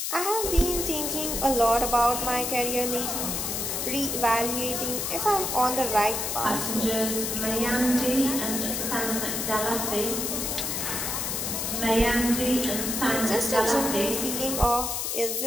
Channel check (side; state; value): left; noise; hiss, 2 dB below the sound